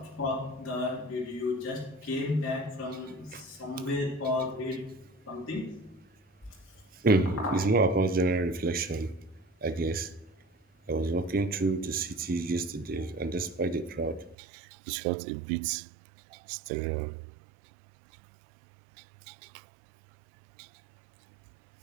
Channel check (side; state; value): left; drops out; at 14.4 s